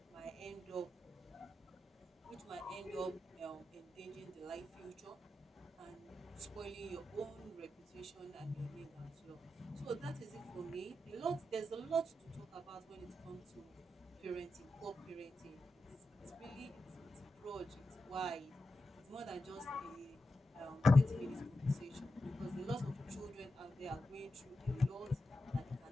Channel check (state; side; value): normal; both; correlation 0.89